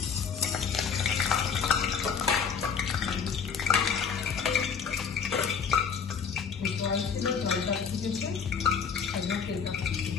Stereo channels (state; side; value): quieter; right; 6.5 dB